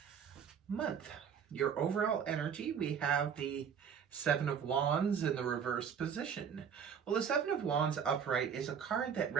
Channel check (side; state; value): left; quieter; 7.4 dB